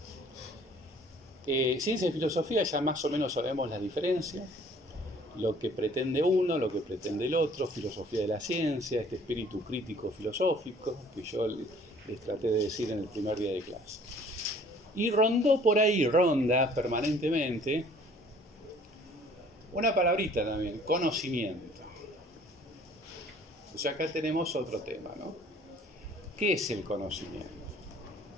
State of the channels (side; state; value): both; normal; correlation 0.54